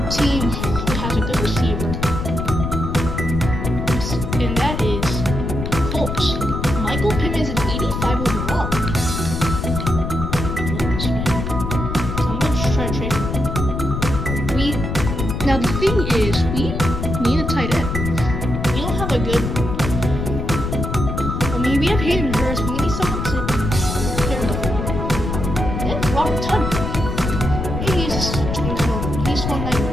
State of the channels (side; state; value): left; noise; rumble, 4 dB below the sound